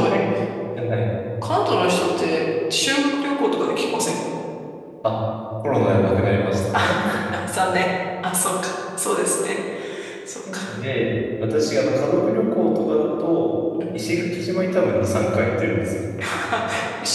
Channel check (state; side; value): identical; both; correlation 1.00